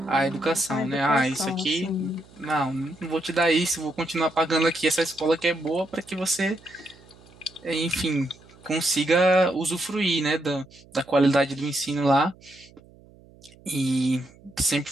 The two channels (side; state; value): right; noise; hum, 25 dB below the sound